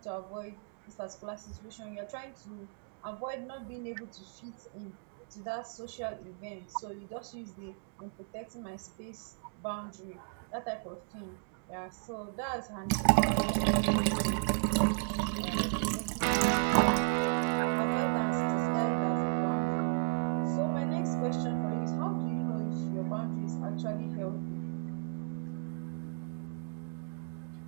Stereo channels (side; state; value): left; silent; 55 dB below the other